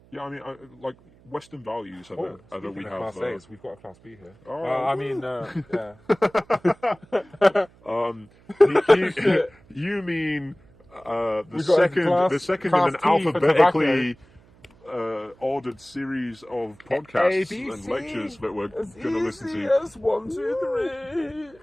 Yeah, I mean, like Western values are that we have. Class A's, we've got a class B here. You mean the second in an alphabetically. Ordered series of podcasts ABC, and lectures that we're going to listen to. As 1, 2,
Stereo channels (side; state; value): right; noise; hum, 28 dB below the sound